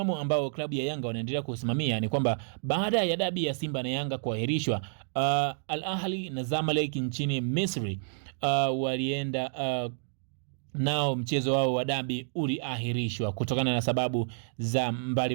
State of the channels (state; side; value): silent; left; digital silence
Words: ambao klabu ya Yanga wanaendelea kusimamia ni kwamba baada ya dabi ya Simba na Yanga kuahirishwa, Al Ahly na Zamalek nchini Misri walienda nao mchezo wao wa dabi uliahirishwa kutokana na sababu za